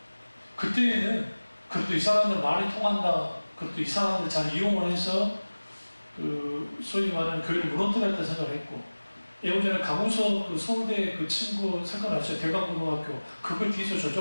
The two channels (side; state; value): both; inverted; correlation -1.00